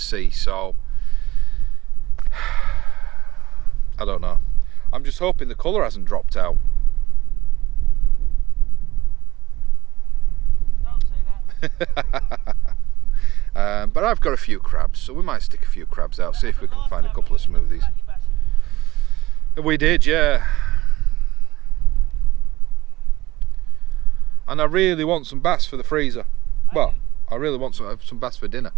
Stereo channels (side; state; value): left; quieter; 17.9 dB